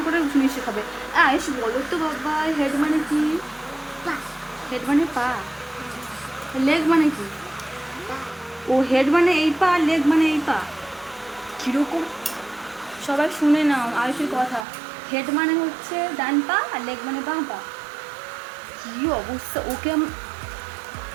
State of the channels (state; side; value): drops out; left; at 14.7 s